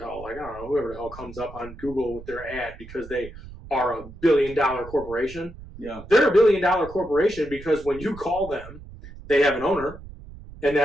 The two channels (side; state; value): right; noise; rumble, 16 dB below the sound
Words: hell, like I don't know, whoever the hell comes up on Google with their ad because they are a $1 billion corporation. Yeah. They're a $1 billion corporation because when you call them, they have an owner, and